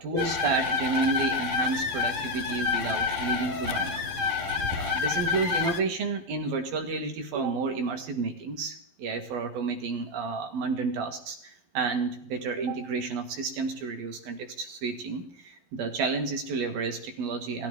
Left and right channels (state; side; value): late; left; 11 ms